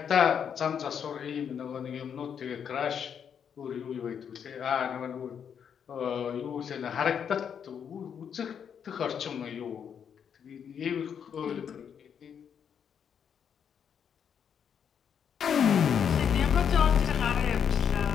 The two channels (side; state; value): right; quieter; 7.8 dB